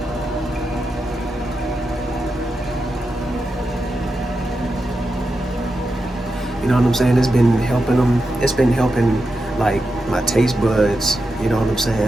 You know what I'm saying? It's been helping them. It's been helping like my taste buds. You know what I'm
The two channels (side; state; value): both; normal; correlation 0.88